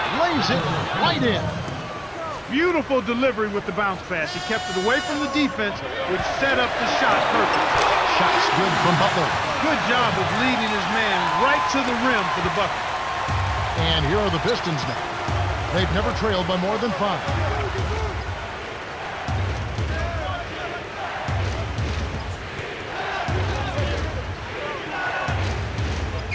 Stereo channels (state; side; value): identical; both; correlation 1.00